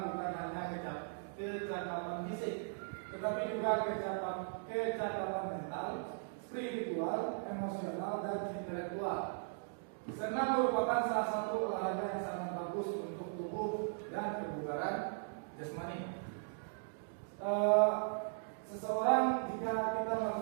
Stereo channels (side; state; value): left; silent; digital silence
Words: bukan hanya kecakapan fisik, tetapi juga kecakapan mental, spiritual, emosional, dan intelektual. Senam merupakan salah satu olahraga yang sangat bagus untuk tubuh dan kebugaran jasmani. Seseorang jika kita